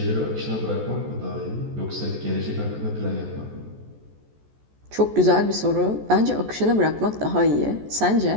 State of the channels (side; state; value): left; late; 14 ms